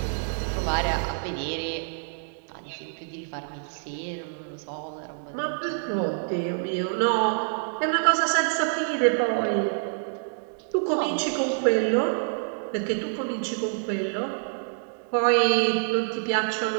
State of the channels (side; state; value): left; silent; digital silence